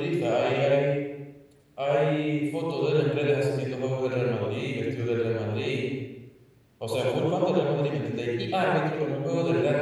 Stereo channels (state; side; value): identical; both; correlation 1.00